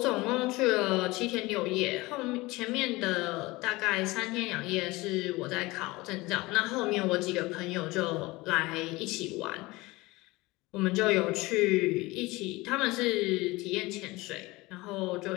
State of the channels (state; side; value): quieter; right; 21.5 dB